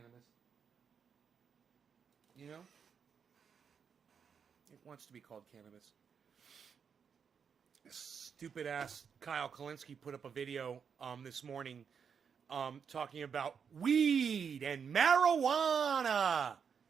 You know? It wants to be called cannabis. Stupid ass Kyle Kalinske put up a video this morning talking about weed and marijuana.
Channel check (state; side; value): quieter; left; 6.8 dB